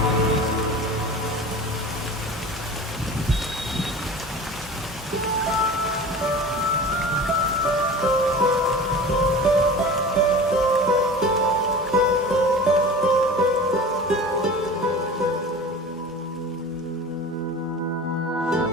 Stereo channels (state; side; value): normal; both; correlation 0.36